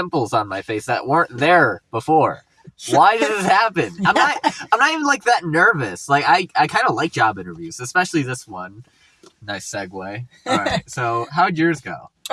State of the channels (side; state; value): both; identical; correlation 1.00